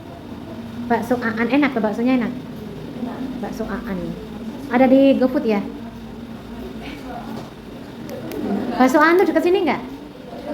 Bakso Aan enak tuh, baksonya enak. Bakso Aan. Ada di GoFood ya? Bakso Aan tuh dekat sini nggak?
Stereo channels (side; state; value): both; identical; correlation 1.00